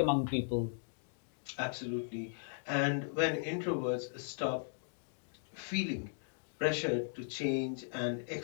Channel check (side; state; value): right; silent; digital silence